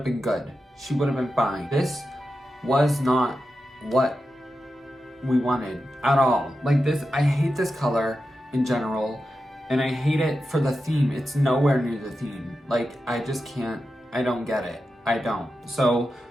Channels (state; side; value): normal; both; correlation 0.90